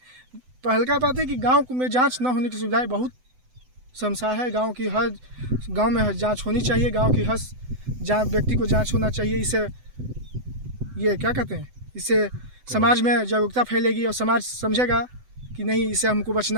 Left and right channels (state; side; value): late; left; 7.9 ms